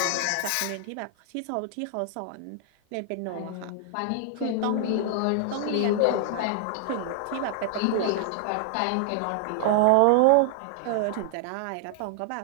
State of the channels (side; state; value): both; different; correlation 0.00